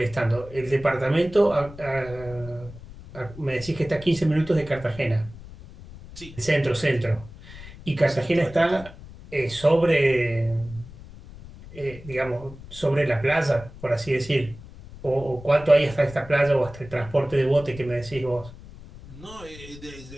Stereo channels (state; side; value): noise; left; rumble, 17 dB below the sound